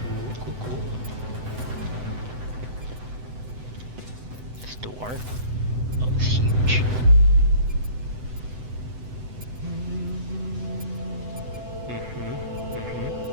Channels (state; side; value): late; left; 7.9 ms